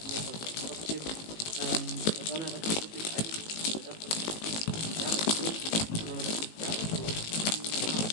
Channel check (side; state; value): right; late; 18 ms